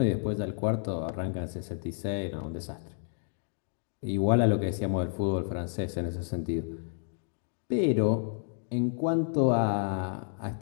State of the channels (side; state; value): right; silent; digital silence